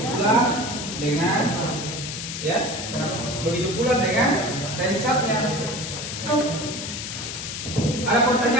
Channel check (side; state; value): left; noise; hiss, 6 dB below the sound